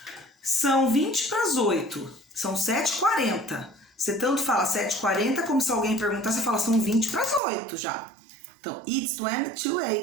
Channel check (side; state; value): left; drops out; at 7.4 s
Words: São 20 para as 8. São 7h40. Você tanto fala 7h40 como se alguém perguntar, você fala são 20 para as 8 já. Então, it's 20 to